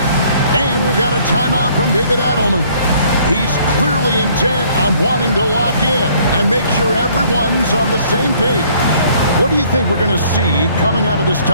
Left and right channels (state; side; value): inverted; both; correlation -0.60